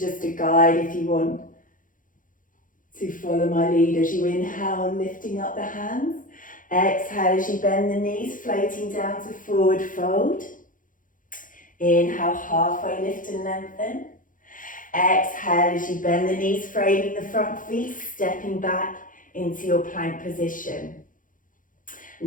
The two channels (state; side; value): late; right; 0.39 ms